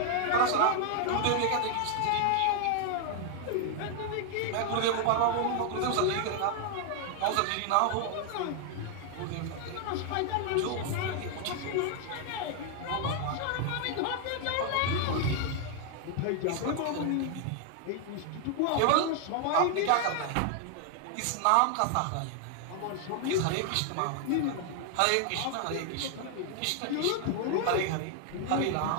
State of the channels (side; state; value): both; different; correlation 0.00